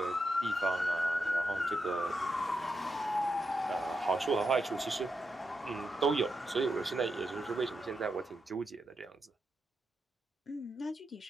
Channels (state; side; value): normal; both; correlation 0.85